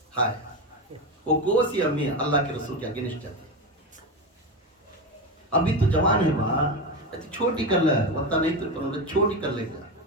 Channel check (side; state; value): both; normal; correlation 0.17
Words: ہائے وہ کوسی امی اللہ کے رسول کے اگینسٹ جاتی. ابھی تو جوان ہے وہاں، چھوٹی کر لے وقتا نہیں تو چھوٹی کر لے گا